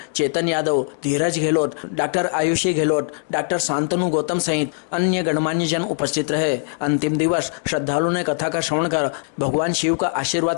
चेतन यादव, धीरज गहलोत, डॉक्टर आयुषी गहलोत, डॉक्टर शांतनु गौतम सहित अन्य गणमान्य जन उपस्थित रहे। अंतिम दिवस श्रद्धालुओं ने कथा का श्रवण कर भगवान शिव का आशीर्वाद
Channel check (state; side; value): silent; right; 64 dB below the other